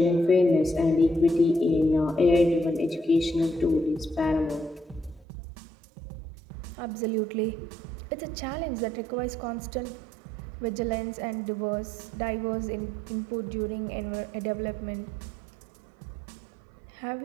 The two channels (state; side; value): drops out; left; at 5.2 s